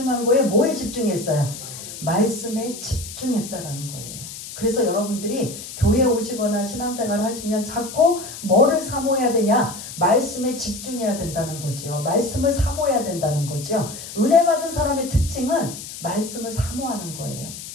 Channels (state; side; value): noise; left; hiss, 11 dB below the sound